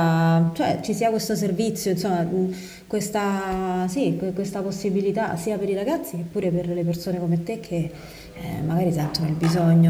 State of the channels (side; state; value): both; identical; correlation 1.00